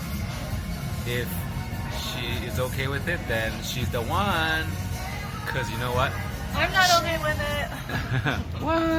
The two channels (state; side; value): identical; both; correlation 1.00